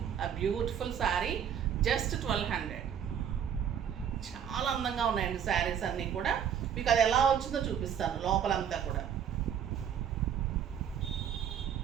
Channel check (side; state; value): left; quieter; 8.6 dB